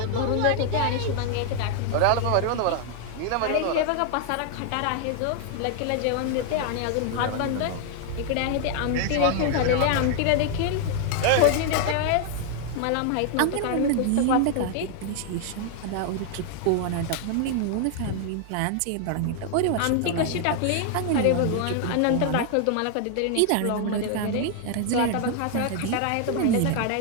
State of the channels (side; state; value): both; different; correlation 0.00